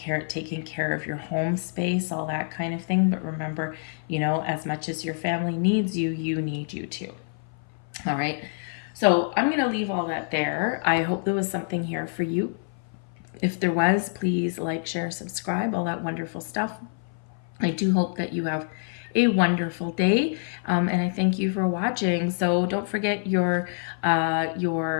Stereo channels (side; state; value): right; silent; 57 dB below the other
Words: taking care of your home space, all that kind of thing. But remember, as much as your family needs you, you need you too. All right. So I'm going to leave all that there. I hope there was something here for you. If there was, please like, share, subscribe, all that wonderful stuff. I do hope that you have a wonderful day, and I thank you for watching. So don't forget you got